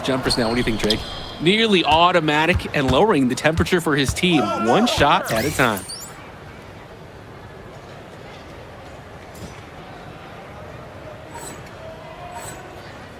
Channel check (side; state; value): both; identical; correlation 1.00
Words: jumpers now. What do you think, Drake? Nearly automatic and lowering the temperature for his team, one shot at a time.